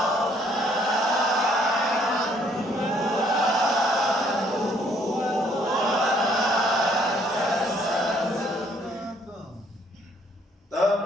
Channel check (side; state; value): both; normal; correlation 0.65